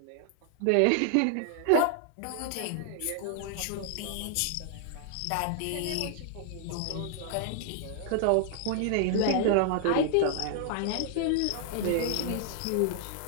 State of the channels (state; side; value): different; both; correlation -0.01